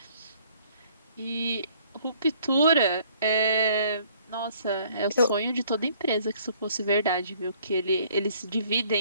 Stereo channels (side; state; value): both; inverted; correlation -0.60